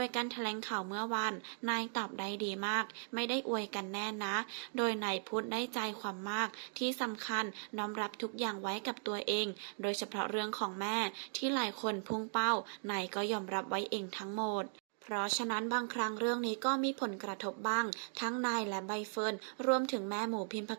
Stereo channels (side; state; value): left; silent; digital silence